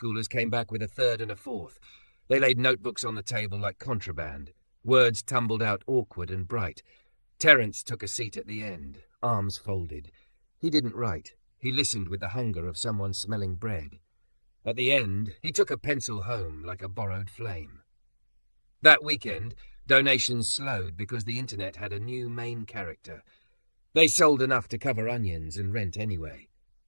came back with a third and a fourth. They laid notebooks on the table like contraband. Words tumbled out awkward and bright. Terence took a seat at the end, arms folded. He didn't write. He listened with the hunger of someone smelling bread. At the end, he took a pencil home like a borrowed flame. That weekend, donations slowed because the internet had a new main character. They sold enough to cover onions and rent anyway.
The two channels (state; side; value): inverted; both; correlation -1.00